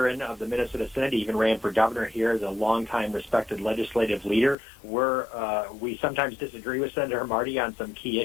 of the Minnesota Senate. He even ran for governor here as a longtime respected legislative leader. We sometimes disagree with Senator Marty on some key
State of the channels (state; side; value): drops out; right; at 4.5 s